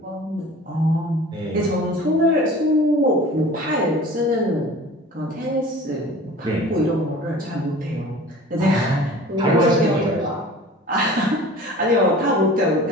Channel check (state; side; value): normal; both; correlation 0.42